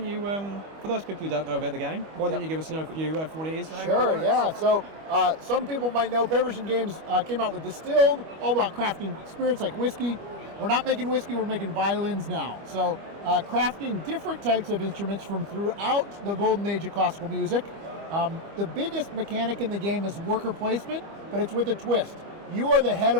you, for those people who don't know about the game, why don't you give us an overview of what it is? Sure, yeah. So some people might know Paverson Games came out with Distilled, all about crafting spirits like whiskey. We're not making whiskey, we're making violins now. So crafting different types of instruments from throughout the golden age of classical music. The biggest mechanic in the game is worker placement, but it's with a twist. You are the head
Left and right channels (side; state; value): left; late; 25 ms